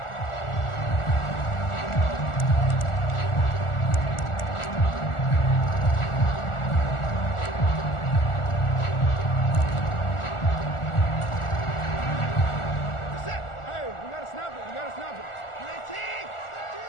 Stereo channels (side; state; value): right; late; 1.4 ms